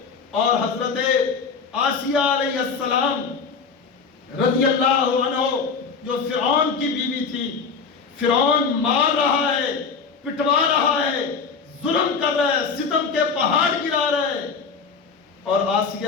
اور حضرت آسیہ علیہ السلام رضی اللہ عنہ جو فرعون کی بیوی تھی، فرعون مار رہا ہے، پٹوا رہا ہے، ظلم کر رہا ہے، ستم کے پہاڑ گرا رہا ہے، اور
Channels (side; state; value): right; quieter; 5.4 dB